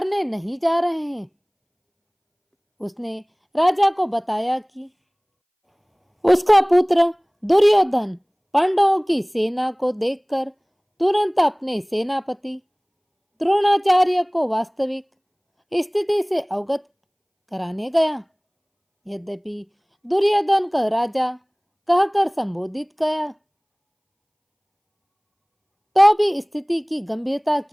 नहीं जा रहे हैं। उसने राजा को बताया कि उसका पुत्र दुर्योधन पांडवों की सेना को देखकर तुरंत अपने सेनापति द्रोणाचार्य को वास्तविक स्थिति से अवगत कराने गया। यद्यपि दुर्योधन का राजा कहकर संबोधित किया, तो भी स्थिति की गंभीरता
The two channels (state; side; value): identical; both; correlation 1.00